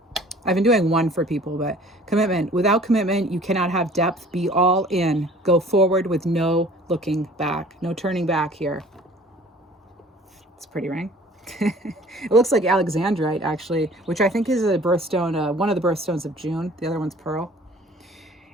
I've been doing 1 for people, but commitment. Without commitment, you cannot have depth. Be all in. Go forward with no looking back. No turning back here. It's a pretty ring. It looks like Alexandrite, actually, which I think is a birthstone, one of the birthstones of June. The other one's Pearl.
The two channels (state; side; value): normal; both; correlation 0.50